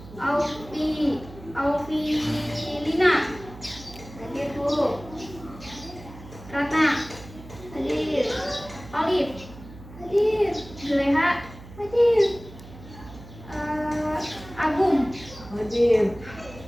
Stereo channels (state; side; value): noise; right; hum, 17 dB below the sound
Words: Auvilina, Hadir, Bu. Ratna, Hadir. Olive, Hadir. Juleha, Hadir. Agung, Hadir.